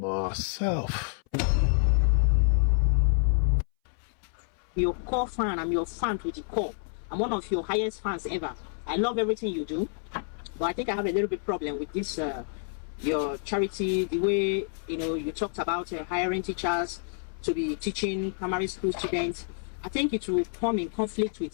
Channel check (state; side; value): silent; right; 59 dB below the other